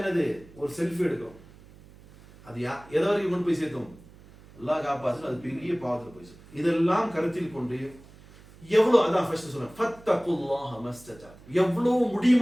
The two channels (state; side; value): noise; right; hum, 22 dB below the sound